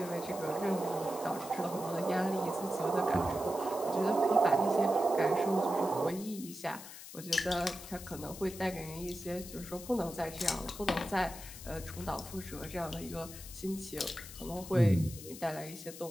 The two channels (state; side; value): noise; left; hiss, 13 dB below the sound